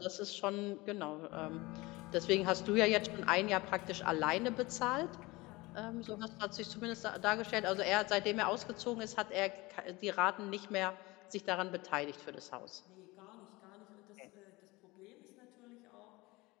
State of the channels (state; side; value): quieter; right; 22.2 dB